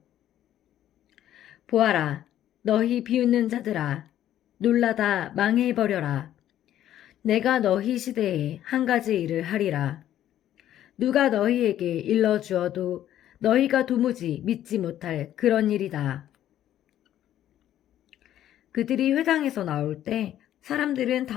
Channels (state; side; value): quieter; right; 11.9 dB